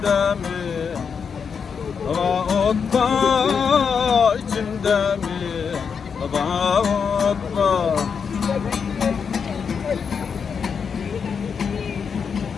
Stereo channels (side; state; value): right; quieter; 6.3 dB